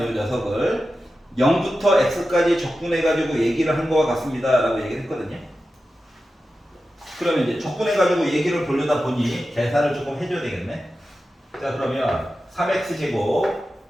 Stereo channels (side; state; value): both; normal; correlation 0.92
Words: 요 녀석을 0부터 x까지 적분해가지고 얘기를 한 거와 같습니다 라고 얘기를 했거든요. 그러면 이제 적분해가지고 얘기를 보려다 보니 계산을 조금 해줘야 되겠네. 자, 그러면 3x제곱